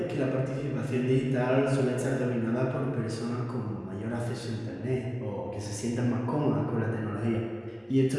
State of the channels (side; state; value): both; identical; correlation 1.00